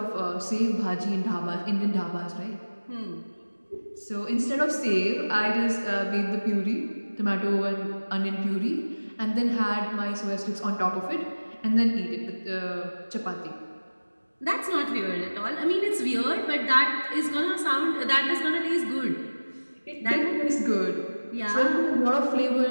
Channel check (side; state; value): both; inverted; correlation -1.00